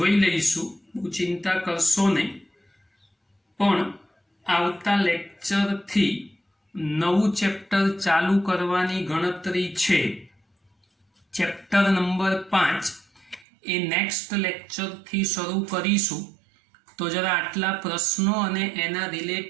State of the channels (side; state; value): left; drops out; at 13.5 s